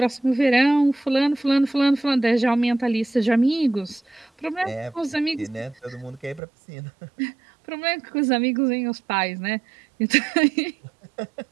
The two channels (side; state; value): left; drops out; at 6.4 s